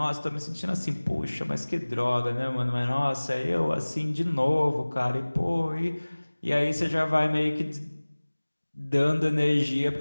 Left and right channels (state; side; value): inverted; both; correlation -1.00